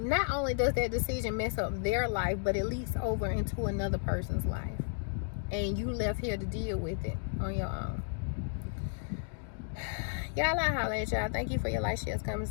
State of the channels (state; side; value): silent; right; digital silence